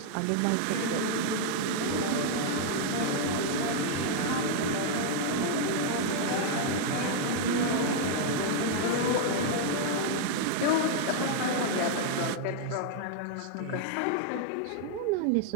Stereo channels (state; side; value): different; both; correlation 0.00